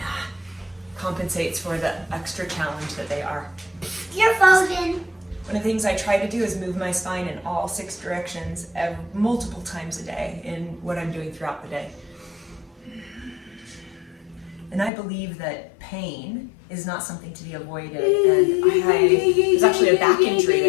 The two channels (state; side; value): drops out; right; at 14.9 s